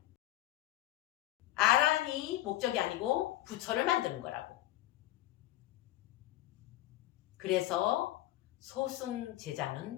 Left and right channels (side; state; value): right; quieter; 15.5 dB